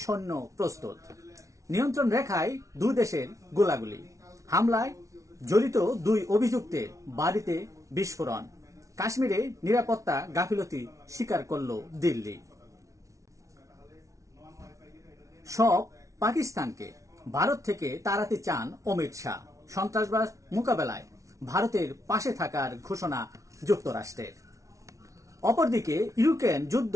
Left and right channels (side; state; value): left; late; 0.15 ms